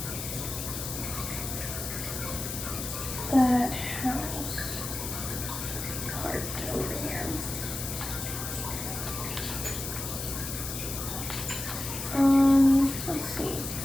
that house part over here. Let's see.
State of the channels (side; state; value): left; noise; hiss, 5 dB below the sound